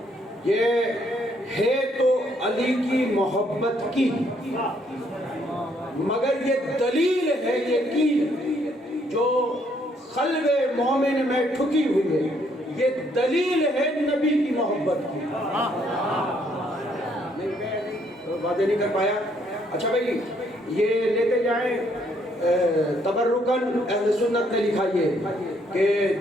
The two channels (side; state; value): both; normal; correlation 0.69